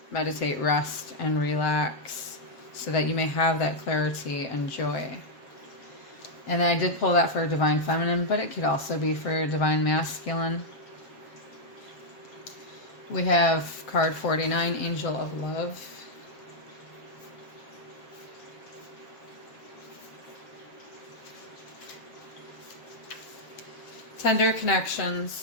meditate, rest, and relax so that you may have that clarity and joy. And I did pull that for divine feminine, but it could also be for divine masculine. We have card 49, Angel of Love. Tender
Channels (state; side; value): late; right; 7.3 ms